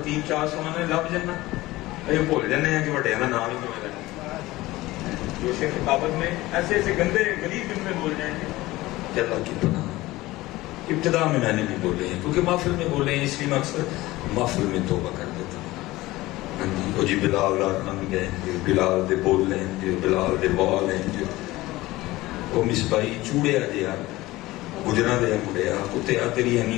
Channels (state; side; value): quieter; right; 18.6 dB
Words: چار سمانے لب جانا یہ بھول جانے ہیں کہ بڑے کا نام ہی کیوں لینا، جو شیخ خطابت میں ایسے ایسے گندے غلیظ جملے بول جائیں گے کہ اللہ کی پناہ۔ ابتدا میں نے بھی بولے ہیں کیونکہ محفل میں بولے ہیں، اس لیے میں اکثر محفل میں توبہ کر دیتا ہوں۔ وہ جی بلال رن گئے، بلال دے بول لیں، بلال دے بال ہیں، وہ مصباحی چوڑیا جہا گجرا دیا مڑیا کتیا تیری اینی